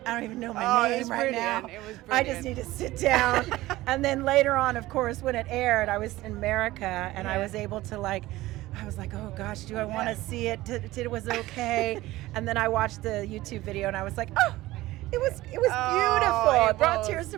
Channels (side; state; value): left; quieter; 17.5 dB